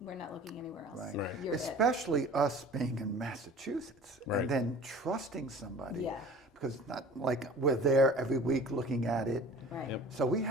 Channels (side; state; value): both; normal; correlation 0.44